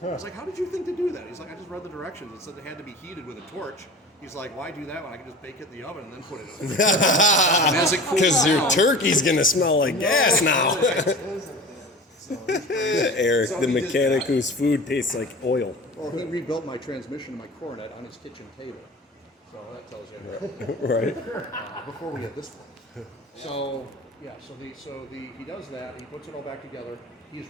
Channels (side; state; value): both; normal; correlation 0.36